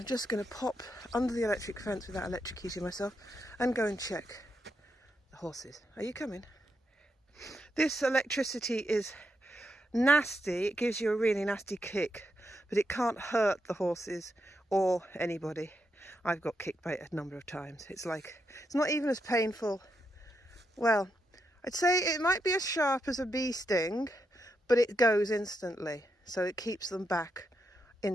just going to pop under the electric fence without electrocuting myself and go and check the horses. Are you coming? This electricity is nasty. It gives you a really nasty kick, but it can't hurt the horses or anybody. I've got kicked by it a number of times. It's not even as painful. Well, I'd say it might be as sharp as a bee sting, but it goes instantly. So it keeps them back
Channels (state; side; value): normal; both; correlation 0.82